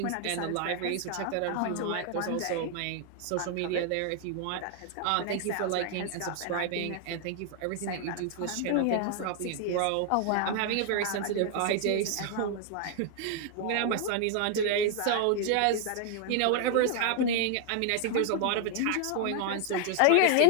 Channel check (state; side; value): different; both; correlation 0.00